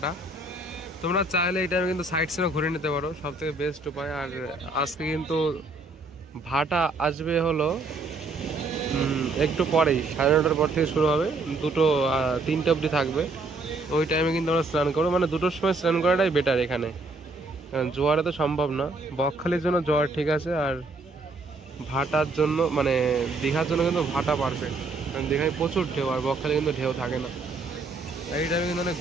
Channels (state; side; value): quieter; left; 3.3 dB